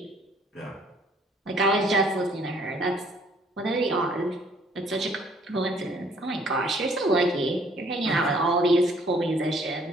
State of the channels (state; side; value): normal; both; correlation 0.61